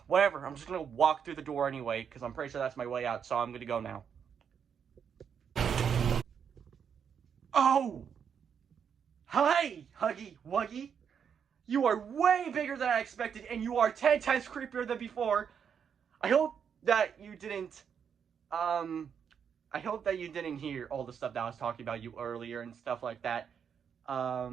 Whatever, I'm just gonna walk through the door anyway, because I'm pretty sure that's my way out, so I'm gonna go now. Oh! Hi, Huggy Wuggy. You are way bigger than I expected, and you are 10 times creepier than before. I hope that you didn't, hear all the stuff that I was talking about you earlier and stuff like that.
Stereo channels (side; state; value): left; quieter; 7.4 dB